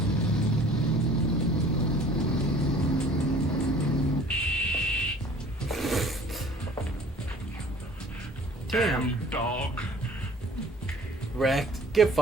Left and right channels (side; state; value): both; normal; correlation 0.50